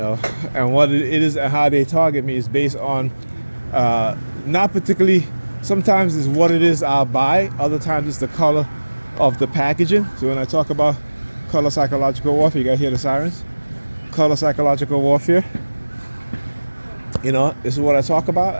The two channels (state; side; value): inverted; both; correlation -1.00